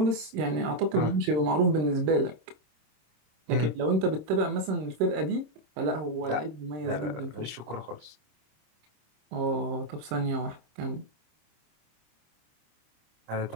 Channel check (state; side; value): late; left; 26 ms